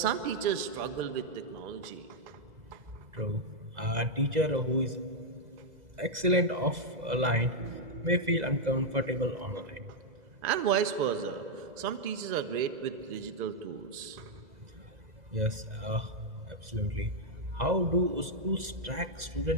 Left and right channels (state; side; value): late; left; 2.0 ms